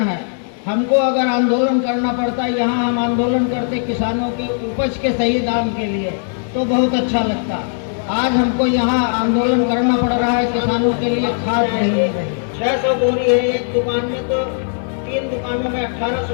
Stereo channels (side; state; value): right; silent; digital silence